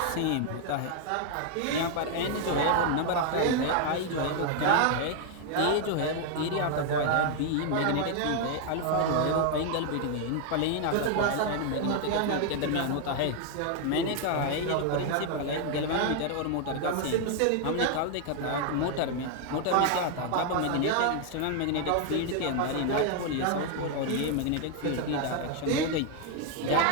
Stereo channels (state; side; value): different; both; correlation 0.00